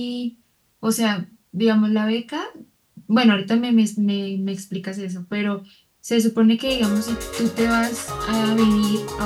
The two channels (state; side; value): identical; both; correlation 1.00